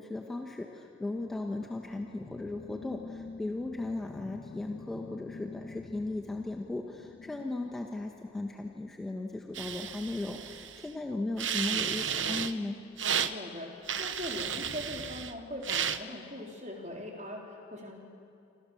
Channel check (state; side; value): normal; both; correlation 0.50